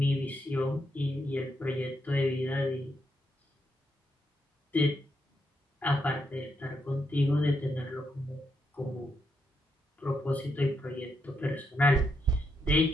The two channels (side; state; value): both; normal; correlation 0.80